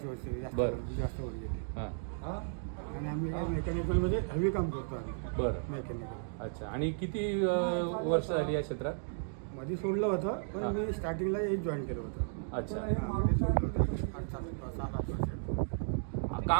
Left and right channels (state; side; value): silent; left; digital silence